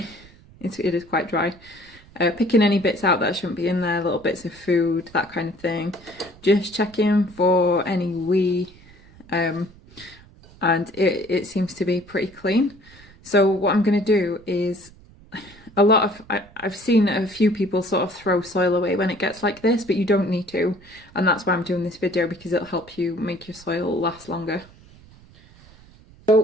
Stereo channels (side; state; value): right; noise; rumble, 24 dB below the sound